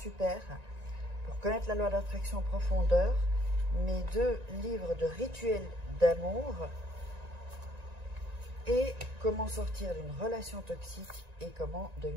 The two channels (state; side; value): late; left; 1.9 ms